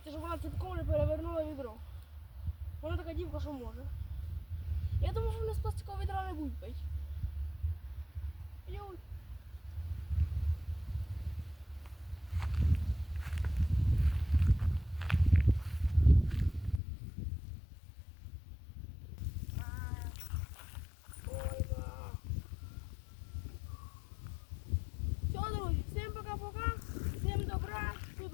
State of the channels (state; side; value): drops out; right; at 16.8 s